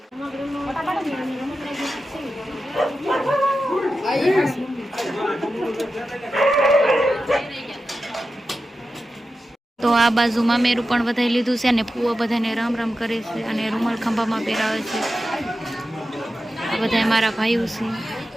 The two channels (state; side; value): normal; both; correlation 0.92